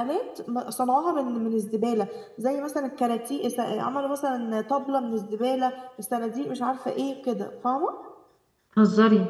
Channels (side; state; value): both; identical; correlation 1.00